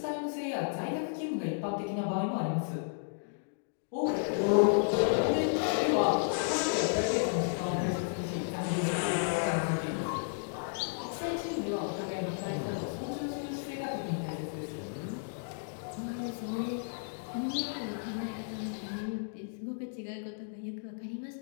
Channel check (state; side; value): silent; right; digital silence